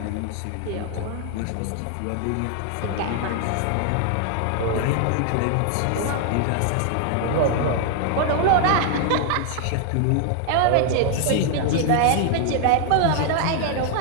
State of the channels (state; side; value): different; both; correlation 0.00